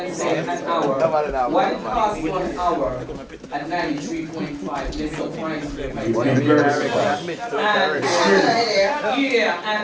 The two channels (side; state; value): both; identical; correlation 1.00